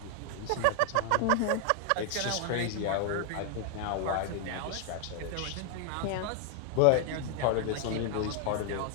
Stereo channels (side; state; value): both; different; correlation 0.00